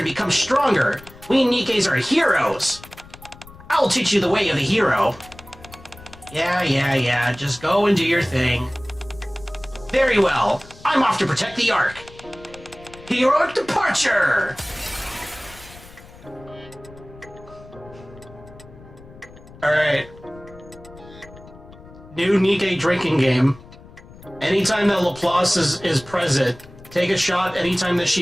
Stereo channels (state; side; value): noise; left; rumble, 20 dB below the sound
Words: become stronger. We Nikkes are heroes. I'll teach you the way of the hero. Yeah. Just go and do your thing. Very well. I'm off to protect the Ark. Heroic departure! Alright. New Nikke drinking game. Anytime that Laplace is present, take a shot anytime that